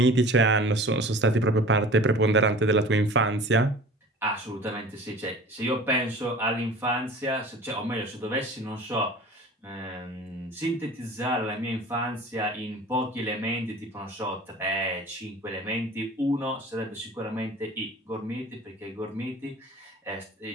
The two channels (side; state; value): both; normal; correlation 0.42